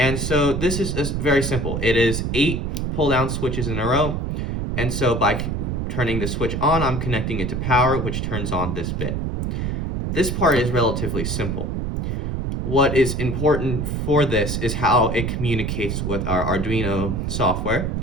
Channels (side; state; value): right; noise; rumble, 1 dB below the sound